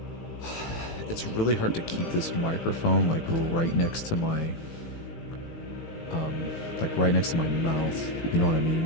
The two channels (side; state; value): right; late; 18 ms